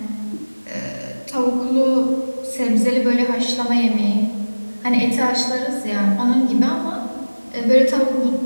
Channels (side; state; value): both; inverted; correlation -1.00